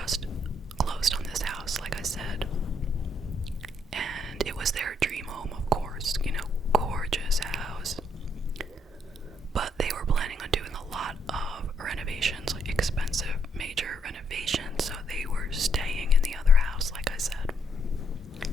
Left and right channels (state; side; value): normal; both; correlation 0.73